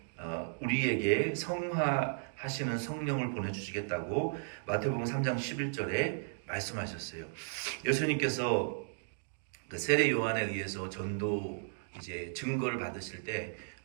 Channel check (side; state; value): left; silent; digital silence